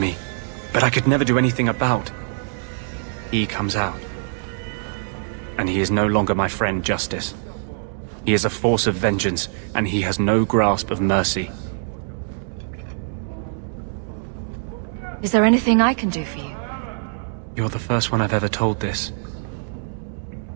but I could never do anything about. He comes out. And he is no longer my friend, Justice. He is a force of vengeance, and he has no grasp of mercy. Is there anything I can do for you? You're the first one I've ever told this.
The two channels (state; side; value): silent; left; digital silence